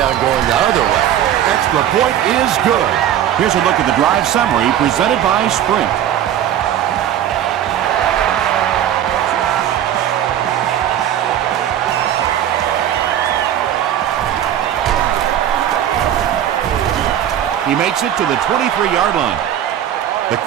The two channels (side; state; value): left; quieter; 10.7 dB